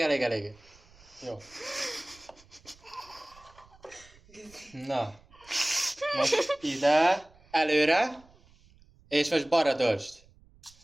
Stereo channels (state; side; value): noise; right; rumble, 27 dB below the sound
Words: Jó. Na. Most ide. Előre. És most balra döltsd.